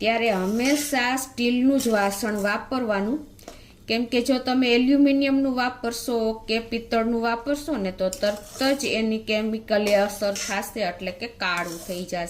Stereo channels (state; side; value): identical; both; correlation 1.00